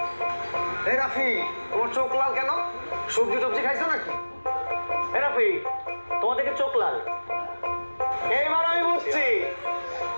এই রাফি, তোমার চোখ লাল কেন? সবজি টবজি খাইছো নাকি? এই রাফি, তোমার দেখে চোখ লাল। এইবার আমি বুঝছি,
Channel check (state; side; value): inverted; both; correlation -1.00